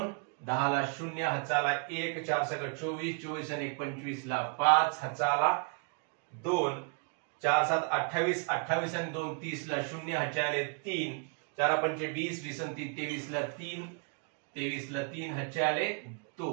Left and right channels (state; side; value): quieter; left; 38.6 dB